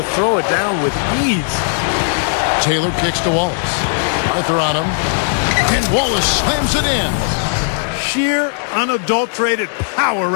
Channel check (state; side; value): silent; right; 61 dB below the other